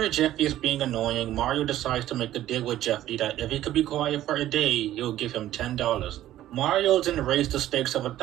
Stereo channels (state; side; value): quieter; left; 13.4 dB